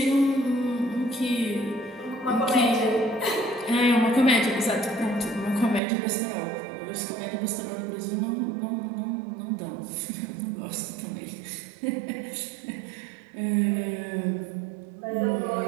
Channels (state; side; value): drops out; left; at 5.8 s